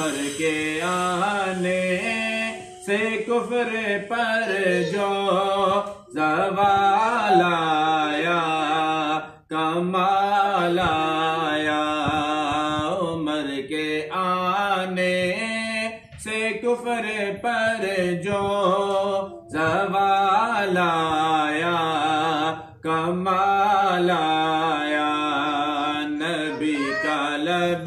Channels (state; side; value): identical; both; correlation 1.00